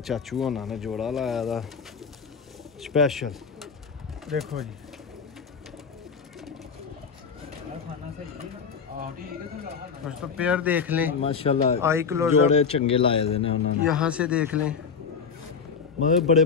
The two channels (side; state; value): right; quieter; 6.0 dB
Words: चाचू होना ने जोड़ा लाया था स्पेशल। देखो जी दोस्तों पेयर देख लें माशाल्लाह आई क्लोज जोड़े चंगे लाए दे ने उन्होंने। यहाँ से देख लें मतलब बड़े